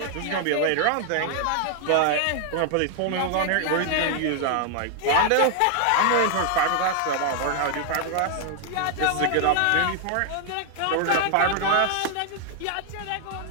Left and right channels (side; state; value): both; different; correlation 0.00